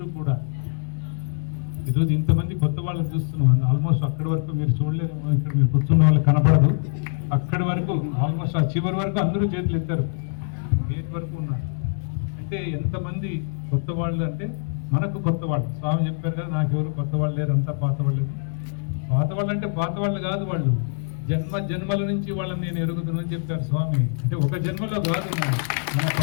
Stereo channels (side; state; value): right; silent; digital silence